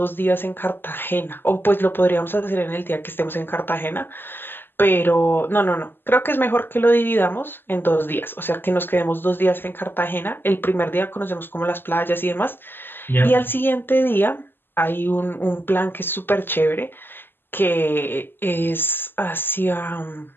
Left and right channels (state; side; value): late; right; 0.098 ms